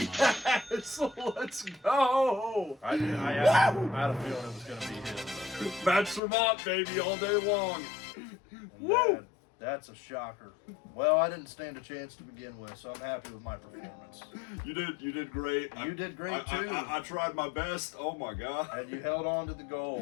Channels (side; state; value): right; drops out; at 6.2 s